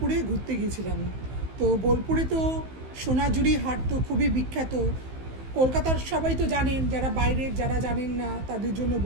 ঘুরতে গিয়েছিলাম। তো বোলপুরে তো সোনাঝুরি হাট তো খুবই বিখ্যাত। কলকাতার সবাই তো জানেন, যারা বাইরের যারা জানেন না তাদের জন্য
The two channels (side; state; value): left; late; 15 ms